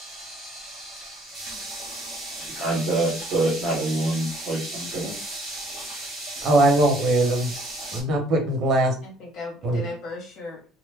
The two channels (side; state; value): both; normal; correlation 0.61